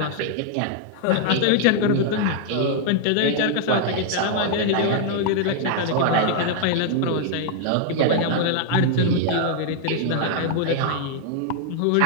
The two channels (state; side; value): different; both; correlation 0.00